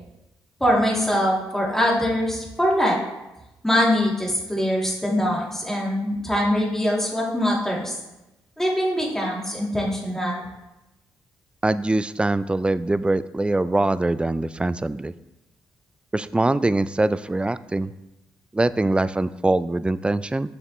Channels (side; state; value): both; normal; correlation 0.87